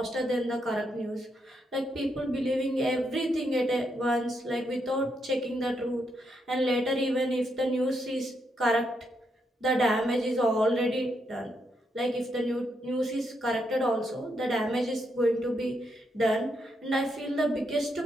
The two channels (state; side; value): normal; both; correlation 0.79